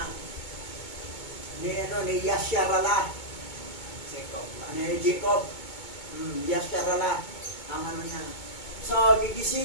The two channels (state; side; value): late; right; 2.2 ms